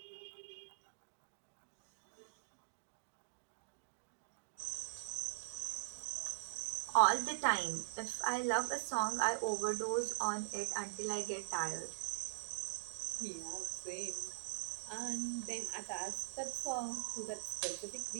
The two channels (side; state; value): left; silent; digital silence